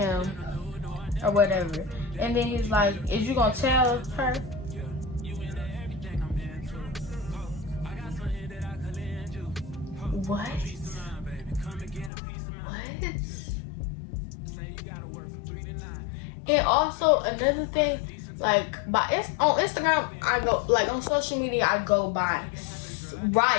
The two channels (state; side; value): drops out; right; at 12.1 s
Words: or whatever. And then he's like, is you gonna tell her? What? And also another thing, like on Instagram, I go, like on social media, I go by